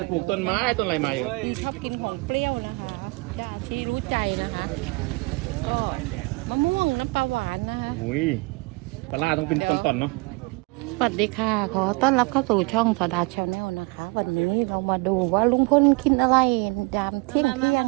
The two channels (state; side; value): quieter; left; 27.7 dB